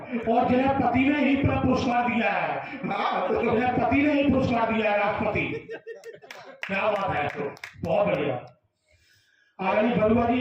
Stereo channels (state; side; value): identical; both; correlation 1.00